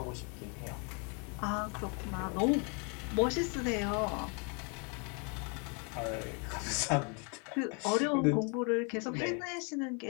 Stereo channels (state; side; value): quieter; right; 36.2 dB